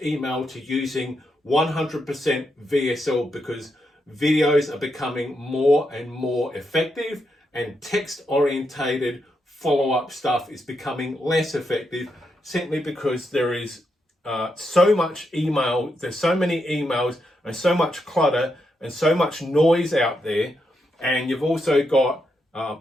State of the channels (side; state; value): both; normal; correlation 0.82